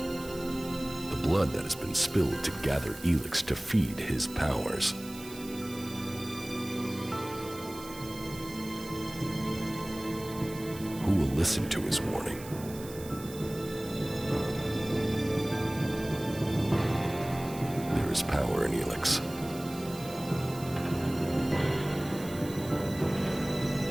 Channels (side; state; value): right; noise; hiss, 16 dB below the sound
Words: the blood that has been spilled to gather ELEX to feed his powers, who will listen to his warning? There is power in ELEX.